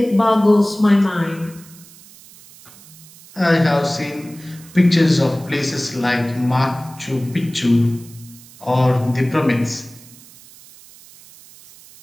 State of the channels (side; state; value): right; noise; hiss, 22 dB below the sound